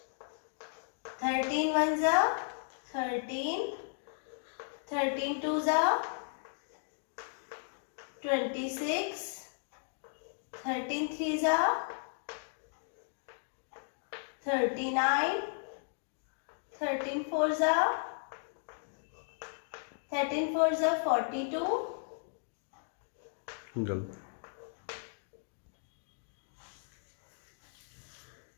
13 ones are 13. 13 twos are 26. 13 threes are 39, 13 fours are 42, गलत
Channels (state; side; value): silent; right; digital silence